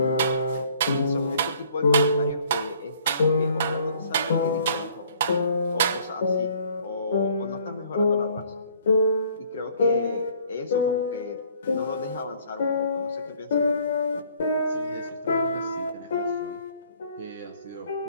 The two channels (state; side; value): inverted; both; correlation -0.59